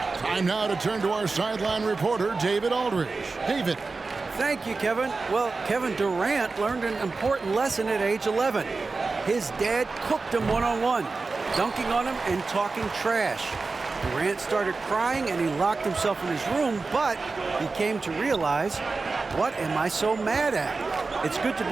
Time now to turn to our sideline reporter, David Aldridge. David. Thank you, Kevin. Well, Kevin Durant learned an important lesson at age 11. His dad cooked him one-on-one, dunking on him and talking trash. Durant started crying and he locked himself in his room, but he came to realize What am I so mad at? It's good to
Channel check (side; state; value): left; quieter; 4.0 dB